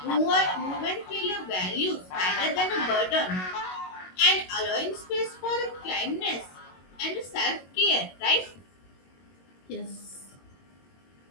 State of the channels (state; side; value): late; right; 22 ms